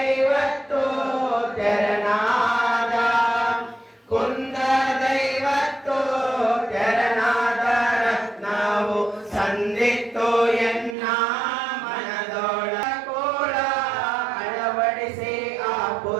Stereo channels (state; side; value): drops out; left; at 11.0 s